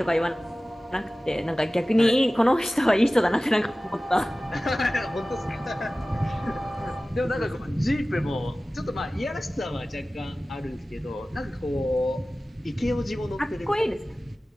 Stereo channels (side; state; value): both; normal; correlation 0.97